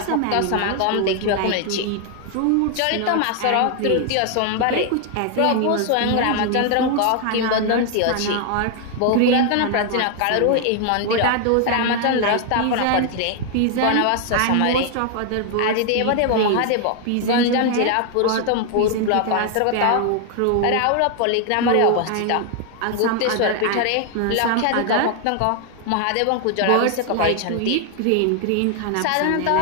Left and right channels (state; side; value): different; both; correlation 0.00